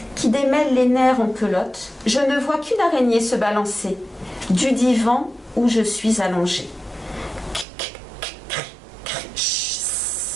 qui démêle les nerfs en pelote, je ne vois qu'une araignée se balancer du divan où je suis allongée.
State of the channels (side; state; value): left; drops out; at 7.7 s